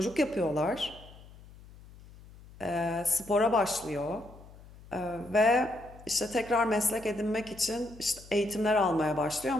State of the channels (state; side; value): noise; left; hum, 20 dB below the sound